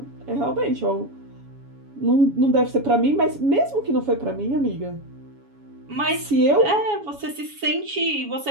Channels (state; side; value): late; left; 7.1 ms